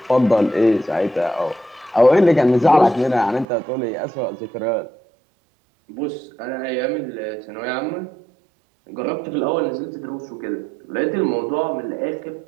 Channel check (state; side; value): drops out; left; at 3.5 s